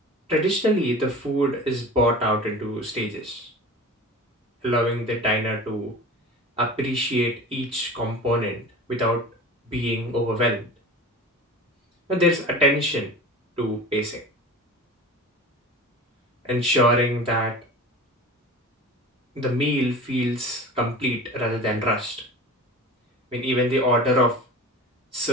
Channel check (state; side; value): normal; both; correlation 0.35